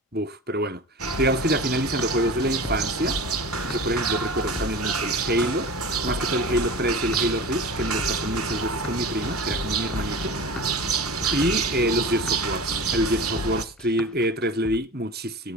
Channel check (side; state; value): both; normal; correlation 0.34